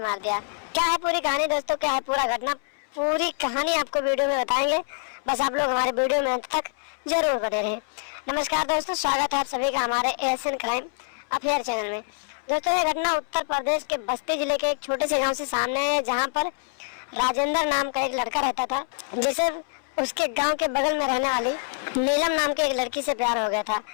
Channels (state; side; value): silent; right; 61 dB below the other